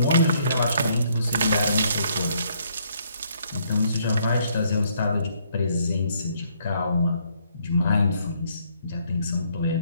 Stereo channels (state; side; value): inverted; both; correlation -0.69